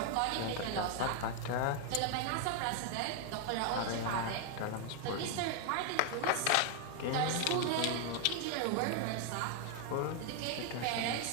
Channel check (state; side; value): different; both; correlation 0.01